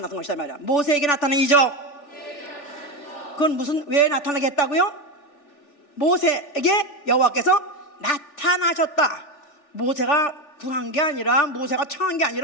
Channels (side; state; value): right; late; 3.4 ms